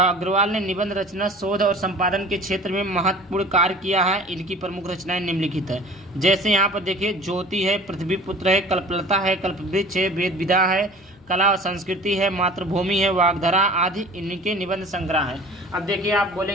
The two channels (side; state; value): left; noise; hum, 27 dB below the sound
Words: ने निबंध रचना, शोध और संपादन के क्षेत्र में महत्वपूर्ण कार्य किया है। इनकी प्रमुख रचनाएं निम्नलिखित है। जैसे यहाँ पर देखिए, ज्योति है, पृथ्वीपुत्र है, कल्पलता है, कल्पवृक्ष है, वेद विधा है, कला और संस्कृति है, मातृभूमि है, वाग्धारा आदि इनके निबंध संग्रह है। अब देखिए आप